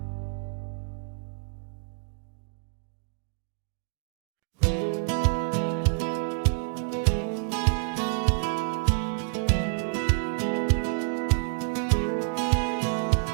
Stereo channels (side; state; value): left; silent; digital silence